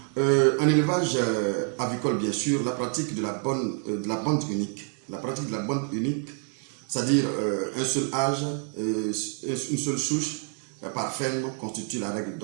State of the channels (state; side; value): quieter; left; 39.8 dB